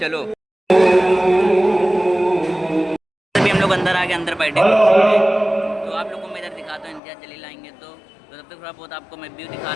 चलो अभी हम लोग अंदर आके अंदर बैठे कुर्सी पे। तो आप लोग को मैं इधर दिखाता हूँ, इम्तियाज जलील आएंगे तो तब तक थोड़ा बहुत आपको मैं व्यू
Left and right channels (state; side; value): drops out; right; at 7.0 s